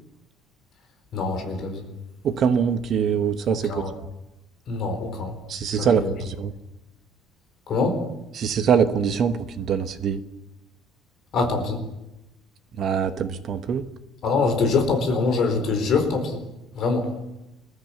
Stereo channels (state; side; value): normal; both; correlation 0.55